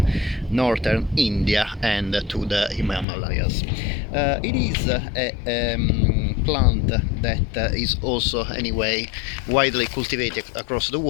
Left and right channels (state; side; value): drops out; right; at 3.1 s